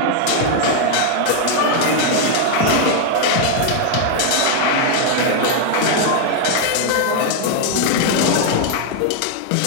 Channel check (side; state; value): both; different; correlation 0.00